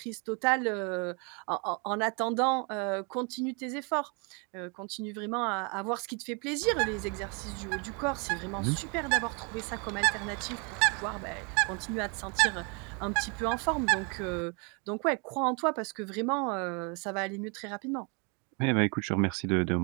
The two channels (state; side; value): quieter; left; 33.5 dB